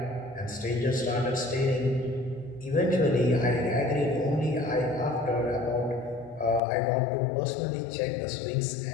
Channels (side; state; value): right; drops out; at 6.6 s